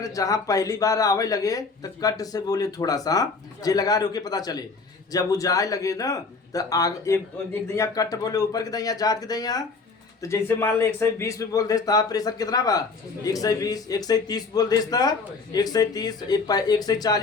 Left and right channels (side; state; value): right; quieter; 4.3 dB